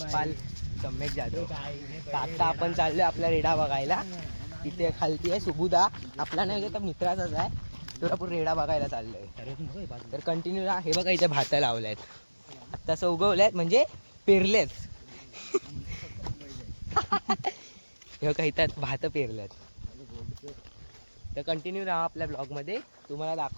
सम्यक जाधव. आता आपण चाललोय आपला रेडा बघायला. इथे खालती आहे सुबुदा, आपला नाही तर मित्राचाच आहे. तो आपण रेडा बघायला चाललोय. तर कंटिन्यू हे बघा इथे भात लावल्यात, आता उगवल्यात म्हणजे पेरलेत. हे बघा इथं भात पेरल्यात. तर कंटिन्यू राहा आपल्या ब्लॉग मध्ये, तुम्हाला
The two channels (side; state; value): both; inverted; correlation -1.00